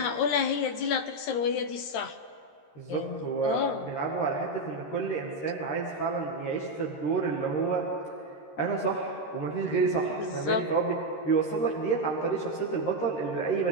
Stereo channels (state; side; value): late; right; 13 ms